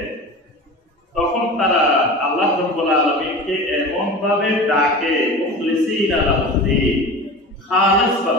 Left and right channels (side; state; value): both; normal; correlation 0.33